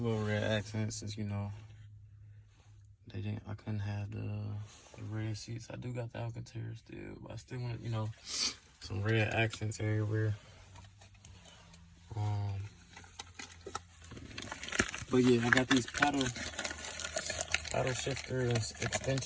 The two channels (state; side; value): identical; both; correlation 1.00